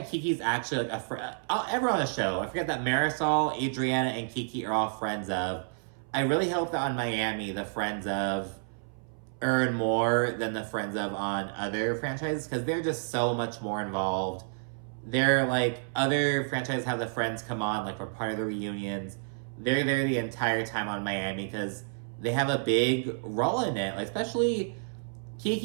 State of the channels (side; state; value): left; silent; 58 dB below the other